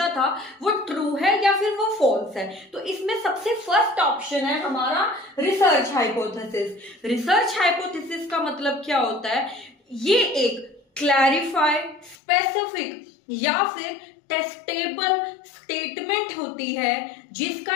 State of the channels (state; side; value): drops out; right; at 12.2 s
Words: था वो ट्रू है या फिर वो फॉल्स है। तो इसमें सबसे फर्स्ट ऑप्शन है हमारा रिसर्च हाइपोथेसिस। रिसर्च हाइपोथेसिस का मतलब क्या होता है? ये एक क्लैरिफाइड, स्पेसिफिक या फिर टेस्टेबल स्टेटमेंट होती है